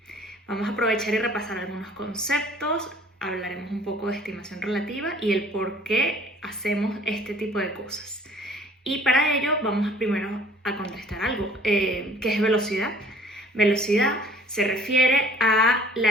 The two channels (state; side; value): normal; both; correlation 0.53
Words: Vamos a aprovechar y repasar algunos conceptos, hablaremos un poco de estimación relativa y el por qué hacemos este tipo de cosas. Y para ello vamos primero a contestar algo. ¿Qué es velocidad? Velocidad se refiere a